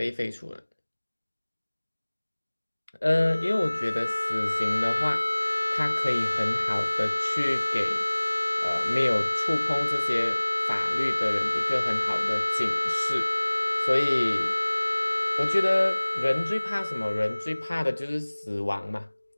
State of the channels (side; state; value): both; inverted; correlation -1.00